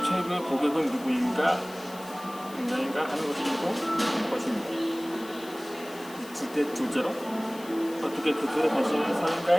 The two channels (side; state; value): left; noise; hiss, 18 dB below the sound